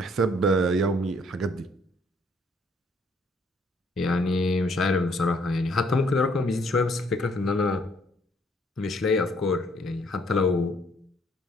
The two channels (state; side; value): normal; both; correlation 0.65